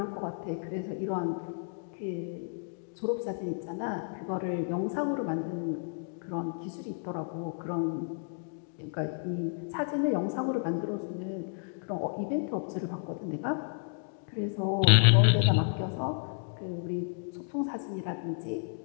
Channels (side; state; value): right; silent; digital silence